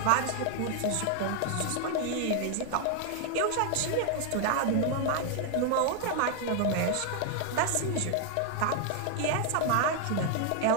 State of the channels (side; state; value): both; different; correlation 0.00